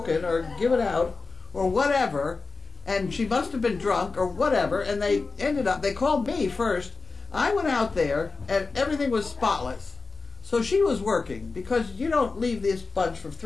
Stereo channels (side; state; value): right; quieter; 4.0 dB